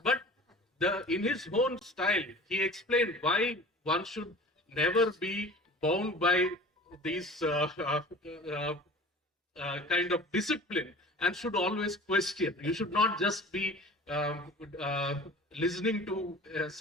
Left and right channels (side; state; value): both; normal; correlation 0.41